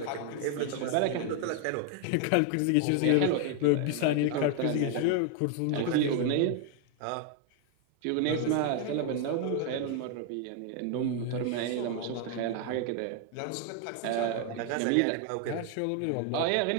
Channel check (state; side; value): different; both; correlation 0.00